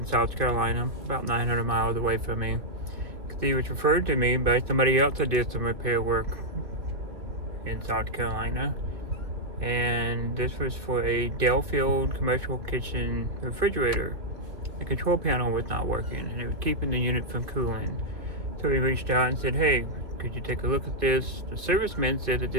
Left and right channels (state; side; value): late; left; 2.8 ms